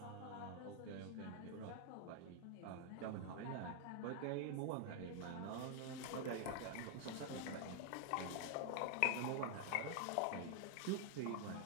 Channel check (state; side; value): different; both; correlation 0.00